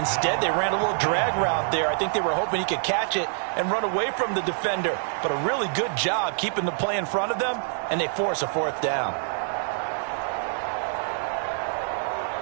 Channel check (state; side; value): silent; left; 61 dB below the other